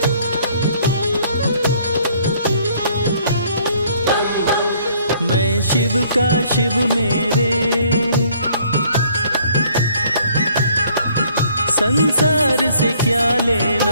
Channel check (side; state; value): both; inverted; correlation -0.61